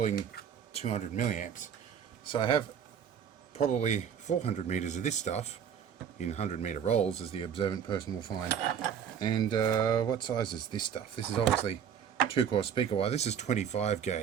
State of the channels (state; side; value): quieter; left; 8.0 dB